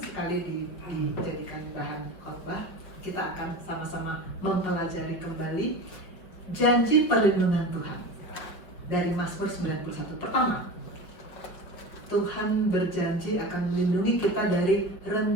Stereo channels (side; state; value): right; late; 5.1 ms